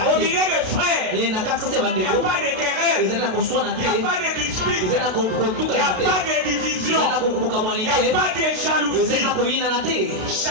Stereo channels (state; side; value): late; left; 32 ms